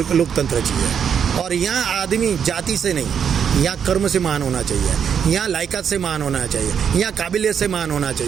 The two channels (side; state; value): left; quieter; 7.7 dB